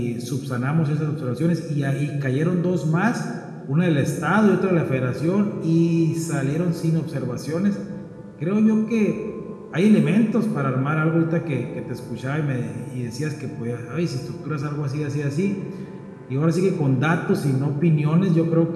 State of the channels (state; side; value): identical; both; correlation 1.00